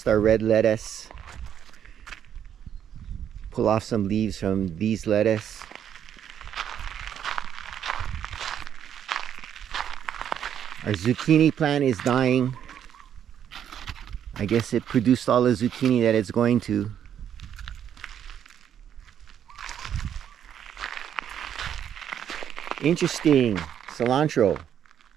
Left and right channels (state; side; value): quieter; left; 9.3 dB